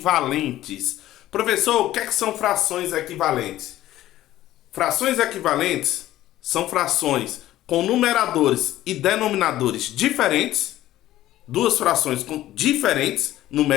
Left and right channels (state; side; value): quieter; right; 14.4 dB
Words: Professor, o que são frações equivalentes? Frações equivalentes são frações com numeradores e denominadores diferentes, duas frações diferentes